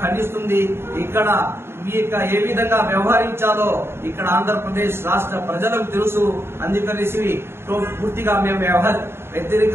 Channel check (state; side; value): late; left; 0.12 ms